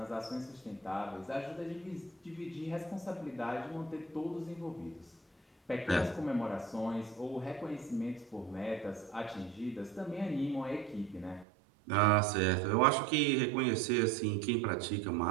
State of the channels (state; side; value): drops out; left; at 11.5 s